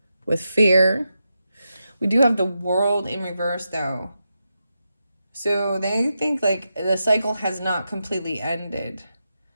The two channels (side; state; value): both; inverted; correlation -0.87